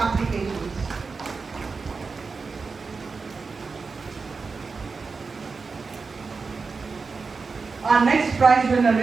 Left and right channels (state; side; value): quieter; left; 4.6 dB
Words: Our next prize winner